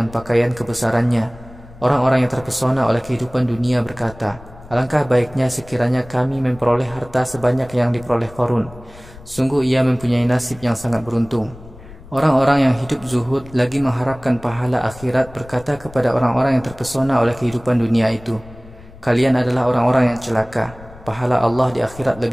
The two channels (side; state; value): left; noise; rumble, 19 dB below the sound